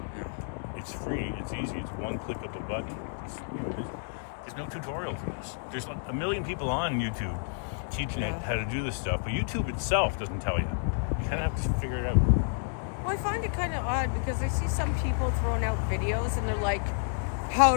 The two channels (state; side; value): silent; right; digital silence